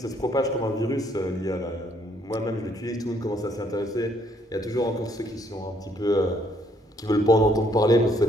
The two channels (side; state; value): both; normal; correlation 0.68